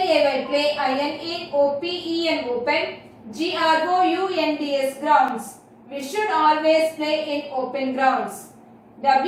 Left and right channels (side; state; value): both; identical; correlation 1.00